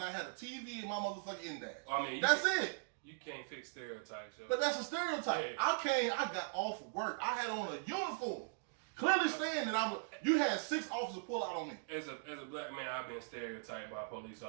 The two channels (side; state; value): left; silent; digital silence